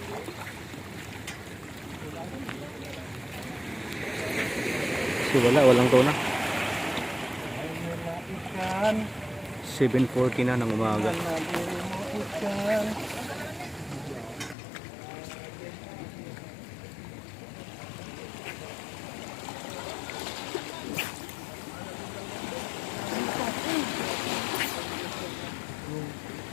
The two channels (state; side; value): drops out; right; at 14.6 s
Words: So walang tuna. 7:40 na ng umaga.